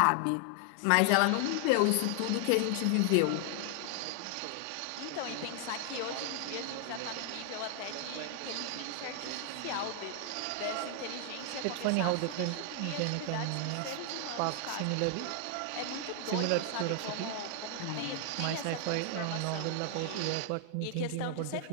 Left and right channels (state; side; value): different; both; correlation 0.00